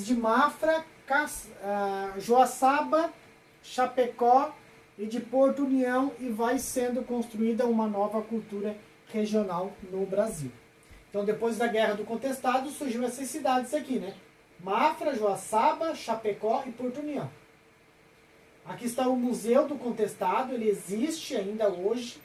de Mafra, Joaçaba, Chapecó e de Porto União, e vai sendo construída uma nova cultura regional no Brasil. Então, depois da Guerra do Contestado, surgiu essas cidades aqui, né? Mafra, Joaçaba, Chapecó e Porto União. Aqui está o Museu do Contestado, ele existe ainda hoje,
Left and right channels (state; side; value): identical; both; correlation 1.00